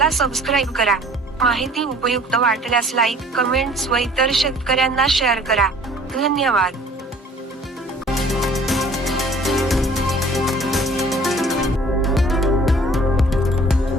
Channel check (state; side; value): normal; both; correlation 0.52